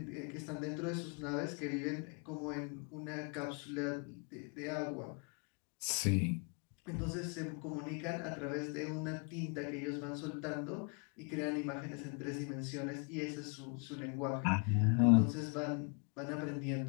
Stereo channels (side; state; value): right; quieter; 36.7 dB